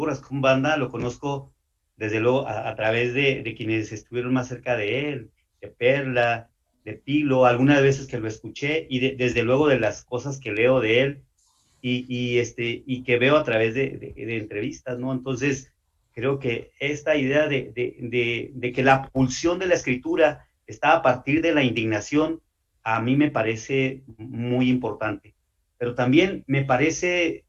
Rascón Banda lo conozco desde luego a través de quienes estuvieron más cerca de él, de Perla, de Pilo, algunas veces que lo escuché y desde luego de las cosas que leo de él y que veo a través de entrevistas, ¿no? Entonces, creo que esta idea de que la pulsión de la escritura está a partir de la indignación, a mí me parece muy importante. Pero también me parece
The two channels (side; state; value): both; identical; correlation 1.00